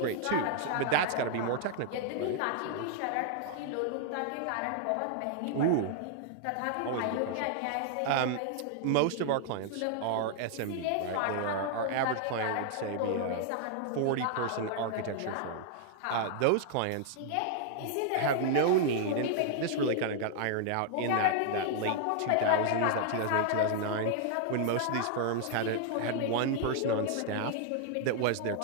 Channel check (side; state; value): both; different; correlation 0.00